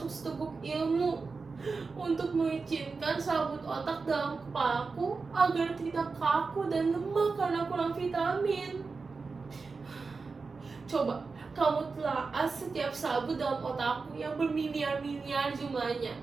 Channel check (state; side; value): quieter; left; 4.4 dB